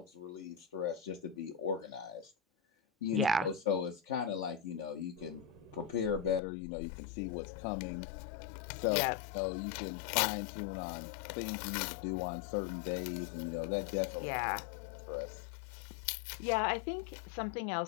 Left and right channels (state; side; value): drops out; right; at 6.4 s